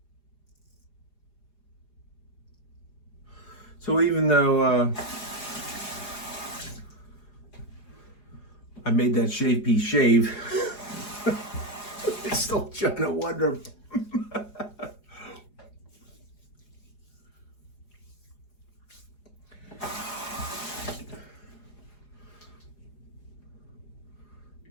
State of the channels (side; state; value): right; late; 4.8 ms